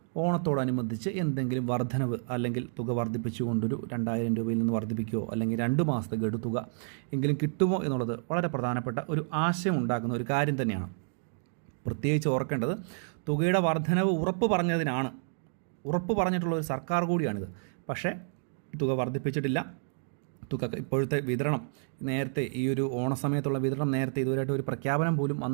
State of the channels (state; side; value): silent; left; digital silence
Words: ഓണത്തോടനുബന്ധിച്ച് എന്തെങ്കിലും വർധനവ് അല്ലെങ്കിൽ തുക വർദ്ധിപ്പിച്ചുകൊണ്ടൊരു 2000 രൂപയിൽ നിന്ന് വർദ്ധിപ്പിക്കുകയോ അല്ലെങ്കിൽ 2 മാസത്തെ ഗഡു തുക എങ്കിലും കിട്ടുമോ എന്നുള്ളത് വളരെ പ്രധാനപ്പെട്ട ഒരു ആശയം ഉണ്ടാക്കുന്ന ഒരു കാര്യം തന്നെയാണ്. പ്രത്യേകിച്ച് ഓർക്കേണ്ടത്, തുകയുടെ വർധനവ് ഉറപ്പ് പറഞ്ഞിട്ടുള്ള ഒരു സർക്കാർ കൂടിയാണിത്. പക്ഷേ തുക വർദ്ധിപ്പിച്ചിട്ടില്ല. തുക ഇപ്പോഴത്തെ വിതരണം നേരത്തെ ഈ ഒരു ഓണസമയത്തുള്ള വിതരണം നേരത്തെ ഇതുവരെയായിട്ട് ഒരു പ്രഖ്യാപനം പോലും